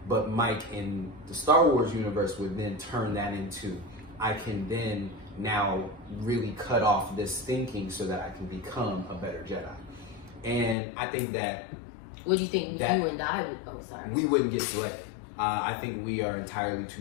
But Mike in the Star Wars universe would then turn that into, I can then now really cut off this thinking so that I can become a better Jedi. And I think that What do you think that you and I would? Oh, sorry. we wouldn't get selected. I think we are entirely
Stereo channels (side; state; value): right; drops out; at 10.8 s